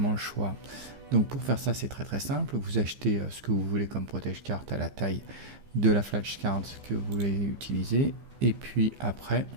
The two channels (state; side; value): late; left; 15 ms